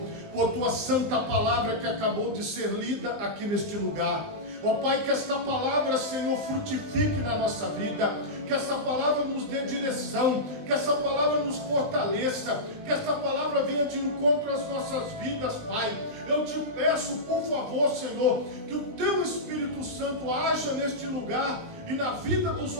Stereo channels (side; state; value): left; late; 19 ms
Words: por tua santa palavra que acabou de ser lida aqui neste lugar. Ó Pai, que esta palavra, Senhor, frutifique na nossa vida, que esta palavra nos dê direção, que esta palavra nos fortaleça, que esta palavra venha de encontro às nossas vidas, Pai. Eu te peço, por favor, Senhor, que o teu Espírito Santo haja neste lugar e na vida dos